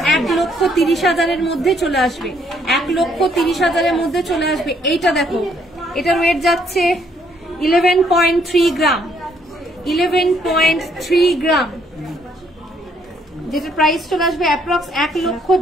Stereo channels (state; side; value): normal; both; correlation 0.68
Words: 1,30,000 মধ্যে চলে আসবে, 1,30,000 মধ্যে চলে আসবে। এইটা দেখো, এটার ওয়েট যাচ্ছে 11.3 গ্রাম, 11.3 গ্রাম, যেটা প্রাইস চলে আসবে অ্যাপ্রক্স